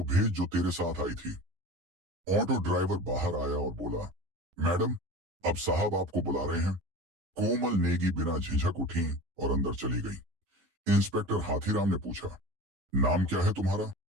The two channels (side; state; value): left; late; 11 ms